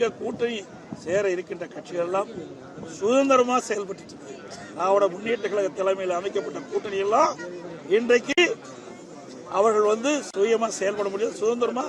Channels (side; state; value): both; identical; correlation 1.00